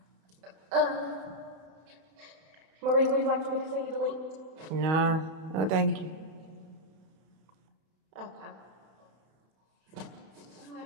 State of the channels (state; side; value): late; left; 31 ms